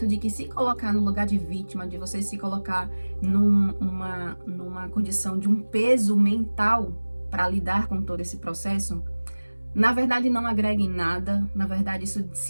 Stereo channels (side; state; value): both; inverted; correlation -1.00